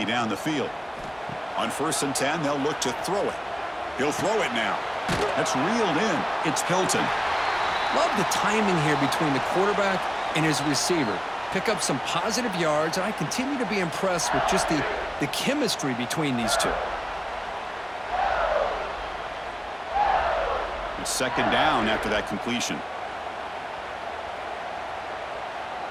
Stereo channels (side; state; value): both; identical; correlation 1.00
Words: down the field. On 1st and 10, they'll look to throw it. He'll throw it now. That's reeled in. It's Hilton. Love the timing here between the quarterback and his receiver. Pick up some positive yards, and I continue to be impressed with just the chemistry between these two. It's second down after that completion.